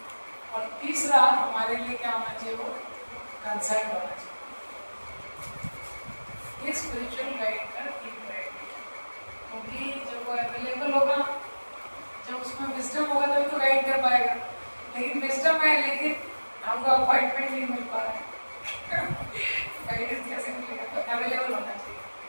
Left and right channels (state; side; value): inverted; both; correlation -1.00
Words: और तीसरा, हमारे लिए क्या होना चाहिए? वो कंसर्न होना चाहिए। ये स्पिरिचुअल गाइड का 3 क्राइटेरिया। क्योंकि जब वो अवेलेबल होगा, जब उसमें विजडम होगा तभी तो गाइड कर पाएगा। लेकिन विजडम है लेकिन हमको अपॉइंटमेंट नहीं मिल पा रहा है, गाइडेंस कैसे मिलेगा? तो अवेलेबल होना चाहिए।